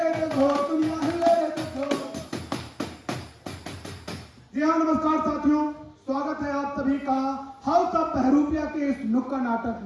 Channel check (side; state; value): both; identical; correlation 1.00